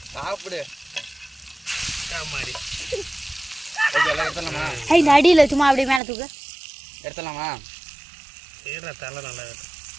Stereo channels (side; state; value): left; drops out; at 6.0 s